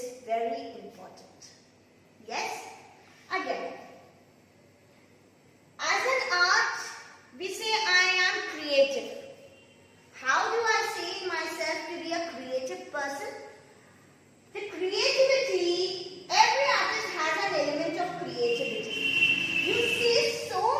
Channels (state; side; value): identical; both; correlation 1.00